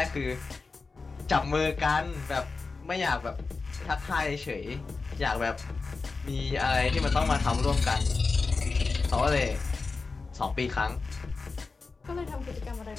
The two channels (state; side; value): quieter; right; 4.2 dB